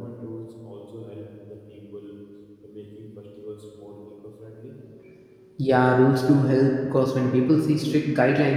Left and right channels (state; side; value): identical; both; correlation 1.00